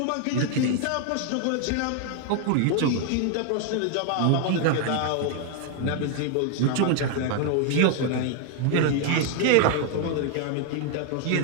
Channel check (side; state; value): both; different; correlation 0.00